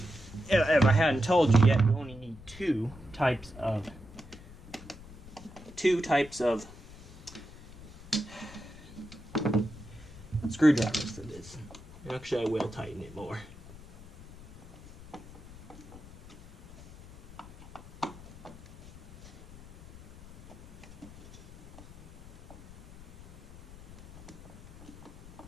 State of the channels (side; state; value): left; noise; rumble, 18 dB below the sound